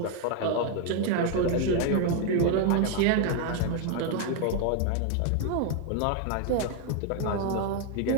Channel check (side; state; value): both; different; correlation 0.01